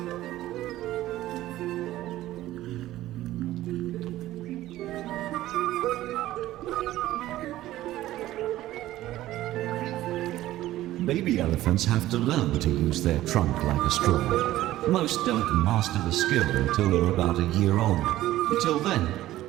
Baby elephants have to learn to use their trunk like a straw. Most don't master the skill until they're about a year old. Until then,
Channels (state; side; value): quieter; left; 15.0 dB